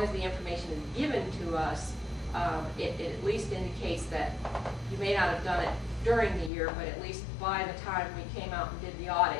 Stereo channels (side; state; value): right; drops out; at 6.5 s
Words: as the information is given to us, it at least indicates that you may not have done it during the year, but at least by the time we came out and did the